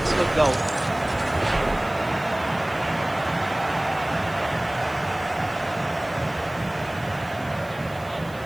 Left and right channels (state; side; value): noise; right; hiss, 23 dB below the sound